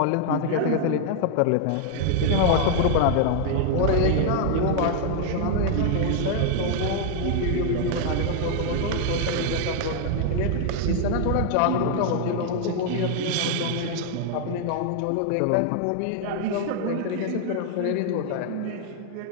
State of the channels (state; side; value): different; both; correlation 0.00